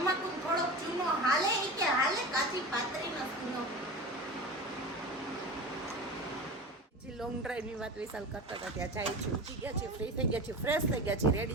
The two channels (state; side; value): normal; both; correlation 0.30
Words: ને થોડોક ચૂનો હાલે. ઈ કે હાલે કાચી પાતળીનો ચૂનો. જે લોંગ ડ્રાઈવ ની વાત વિશાલ કરતા હતા ત્યાં જાય છે, ઉઠી ગયા છે, ફ્રી થઈ ગયા છે, ફ્રેશ થઈ ગયા છે,